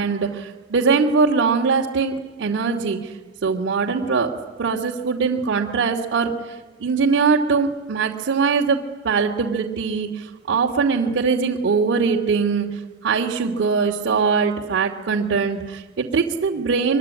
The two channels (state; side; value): quieter; left; 4.7 dB